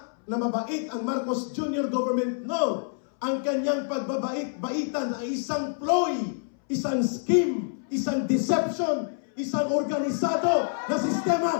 na mabait ang Marcos Jr. government. No! Ang kanyang pagbabait-baitan ay isang ploy, isang scheme, isang deception, isang organisado na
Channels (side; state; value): right; silent; 60 dB below the other